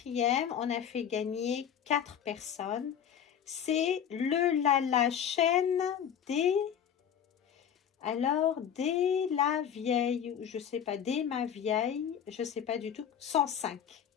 on a fait gagner 4 personnes. C'est la chaîne des... Alors, dès la vieille, je sais pas, dès ma vieille, je sais pas du tout, 105.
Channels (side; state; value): right; quieter; 8.7 dB